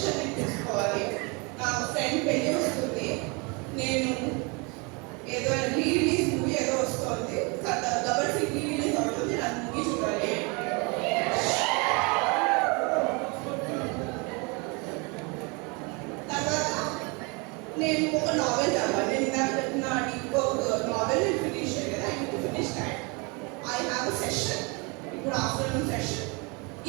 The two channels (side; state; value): left; quieter; 30.2 dB